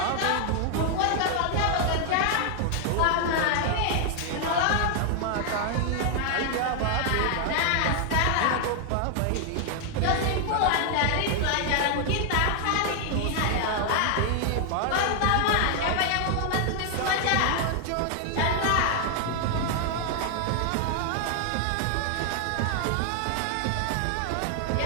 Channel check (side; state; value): both; different; correlation 0.00